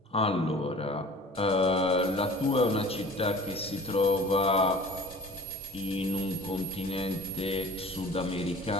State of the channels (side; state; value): both; normal; correlation 0.42